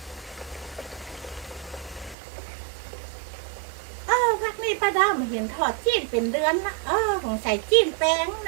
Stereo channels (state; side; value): drops out; left; at 2.1 s